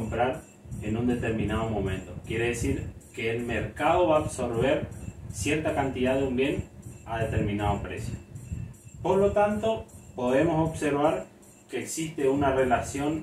en un determinado momento. Quiere decir que el mercado va a absorber cierta cantidad de un bien a determinado precio. Por lo tanto, podemos observar que existe una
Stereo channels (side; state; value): both; identical; correlation 1.00